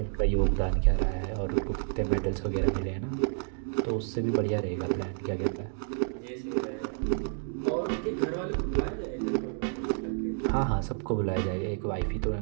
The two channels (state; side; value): silent; left; 58 dB below the other